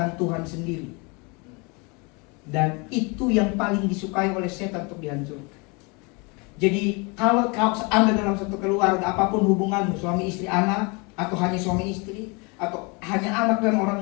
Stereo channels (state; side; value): quieter; right; 30.0 dB